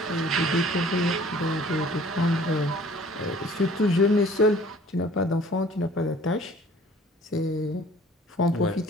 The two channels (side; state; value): both; normal; correlation 0.52